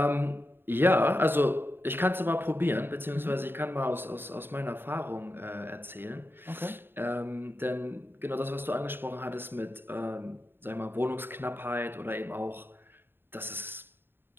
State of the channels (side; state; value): left; late; 0.10 ms